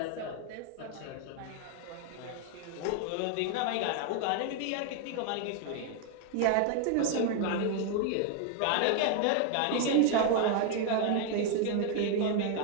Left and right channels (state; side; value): different; both; correlation 0.00